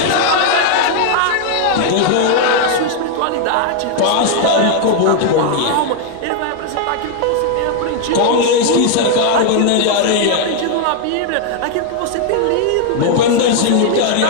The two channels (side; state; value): both; different; correlation 0.00